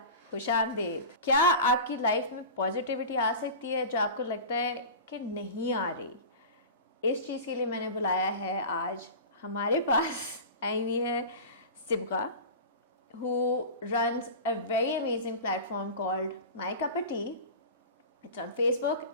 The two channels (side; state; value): both; inverted; correlation -0.31